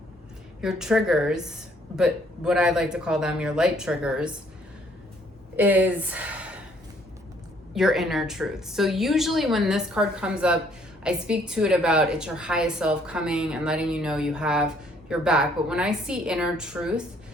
your triggers, but what I like to call them your light triggers, is your inner truth. So usually when this card comes up, I speak to it about it's your highest self coming and letting you know you have your back. But when I see inner truth,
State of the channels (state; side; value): normal; both; correlation 0.64